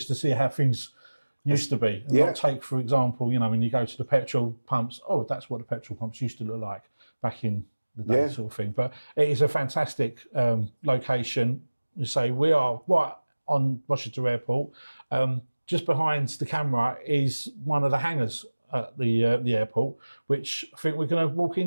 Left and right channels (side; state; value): both; inverted; correlation -1.00